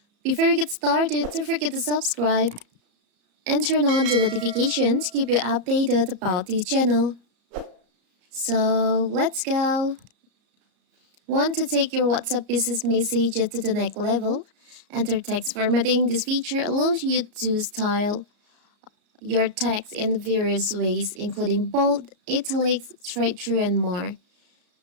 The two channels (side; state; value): left; late; 34 ms